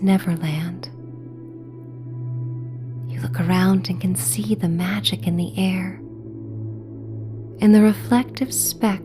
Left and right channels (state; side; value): identical; both; correlation 1.00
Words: Neverland. You look around and can see the magic in the air and the reflective